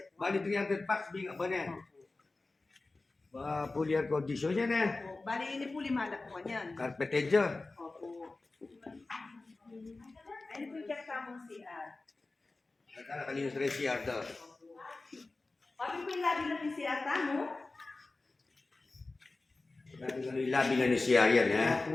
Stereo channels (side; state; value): right; quieter; 3.4 dB